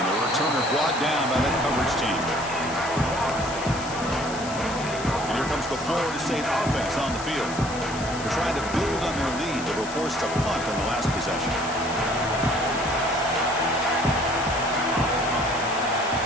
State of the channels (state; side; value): noise; left; hiss, 12 dB below the sound